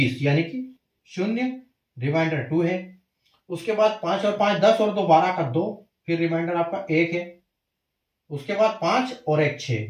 यानी कि शून्य, रिमाइंडर 2 है। उसके बाद 5 और 5 10 और 2 12 का 2, फिर रिमाइंडर आपका 1 है। उसके बाद 5 और 1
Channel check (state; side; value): identical; both; correlation 1.00